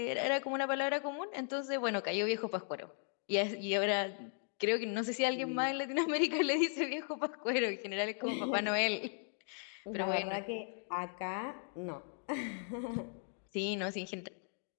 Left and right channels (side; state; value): right; silent; 53 dB below the other